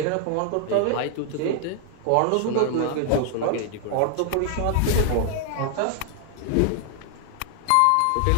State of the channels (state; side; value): different; both; correlation 0.00